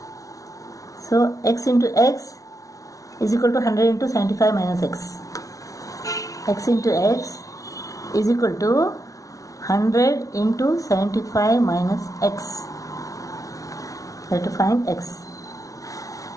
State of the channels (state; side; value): late; right; 0.17 ms